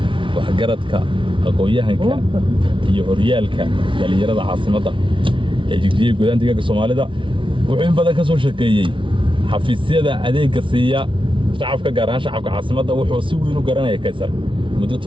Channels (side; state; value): left; late; 0.25 ms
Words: waxgaradka aqoonyahanka iyo horyaalka dhalinyarada caasimadda ee Jigjiga gudaha deegaanka Soomaalida wuxuu in badan ka soo shaqeeyay xafiisyada adeegga siiya shacabka gaar ahaan shacabka caasimadda wuxuu si weyn u garanayay Kaysar muddo